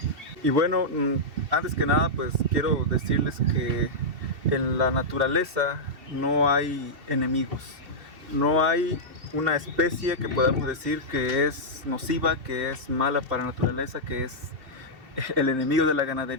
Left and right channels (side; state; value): left; late; 2.7 ms